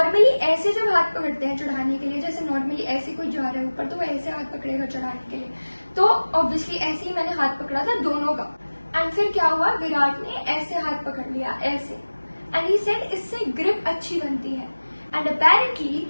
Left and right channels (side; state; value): both; inverted; correlation -1.00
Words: ऐसे जब हाथ पकड़ते हैं चढ़ाने के लिए, जैसे नॉर्मली ऐसे कोई जा रहा है ऊपर तो वो ऐसे हाथ पकड़ेगा चढ़ाने के लिए, तो ऑब्वियसली ऐसे ही मैंने हाथ पकड़ा था दोनों का. एंड फिर क्या हुआ, विराट ने ऐसे हाथ पकड़ लिया ऐसे, एंड ही सेड इससे ग्रिप अच्छी बनती है. एंड अपेरेंटली